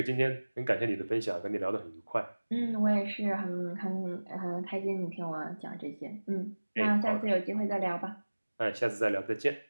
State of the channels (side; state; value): both; inverted; correlation -1.00